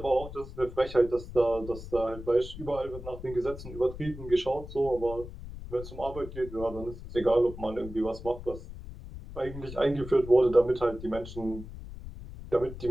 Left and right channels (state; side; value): noise; left; rumble, 12 dB below the sound